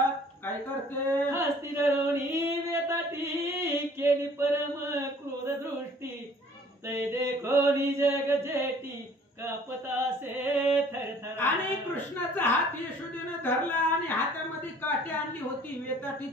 काय करते. हस्ती धरोणी वेताटी केली परम क्रोध दृष्टी तै देखो जग जेटी कापतासे थरथर. आणि कृष्णाचा हात यशोदेनं धरला आणि हातामध्ये काठी आणली होती. वेताटी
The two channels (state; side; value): normal; both; correlation 0.53